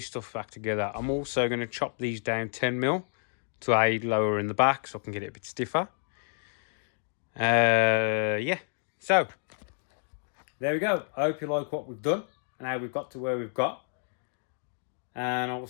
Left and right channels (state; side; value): silent; right; 58 dB below the other